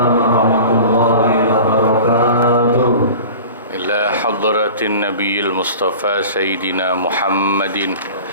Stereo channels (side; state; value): both; inverted; correlation -0.38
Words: warahmatullahi wabarakatuh. Ila hadratin nabiyil mustafa sayyidina Muhammadin